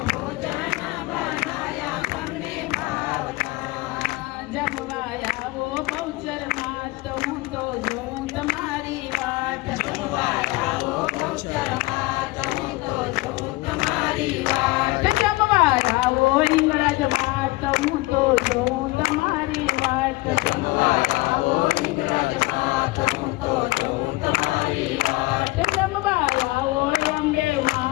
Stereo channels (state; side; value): quieter; right; 21.3 dB